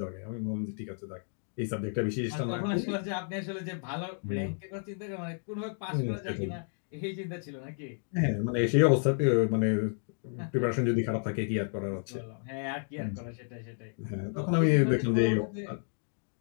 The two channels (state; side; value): silent; right; 57 dB below the other